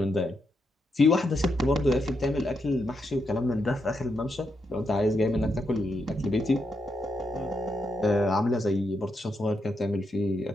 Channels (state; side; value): normal; both; correlation 0.82